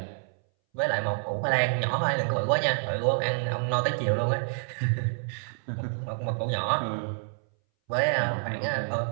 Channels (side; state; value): left; silent; 59 dB below the other